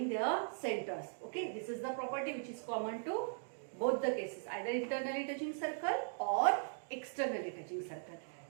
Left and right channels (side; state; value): left; silent; digital silence